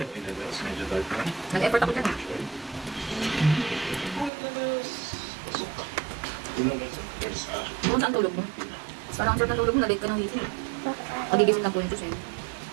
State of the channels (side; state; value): left; drops out; at 4.3 s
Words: Nag-effort ako dyan. Kung saan tulog mo? Parang ang sarap ng tulog mo, na-late ka ng gising. Magigising lang po yung Diyos eh.